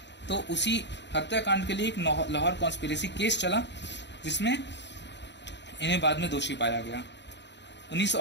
तो उसी हत्याकांड के लिए एक लाहौर कॉन्स्पिरेसी केस चला, जिसमें इन्हें बाद में दोषी पाया गया।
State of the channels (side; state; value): right; late; 0.51 ms